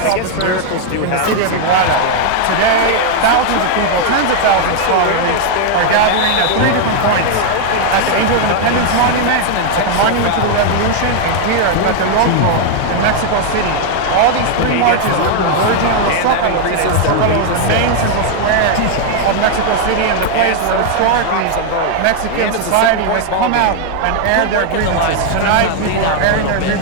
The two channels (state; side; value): different; both; correlation 0.00